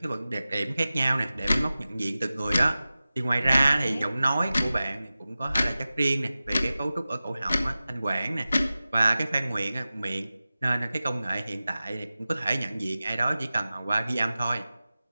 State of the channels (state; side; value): inverted; both; correlation -0.96